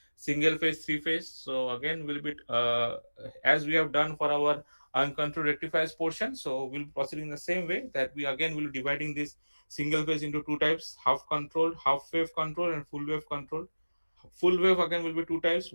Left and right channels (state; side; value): inverted; both; correlation -1.00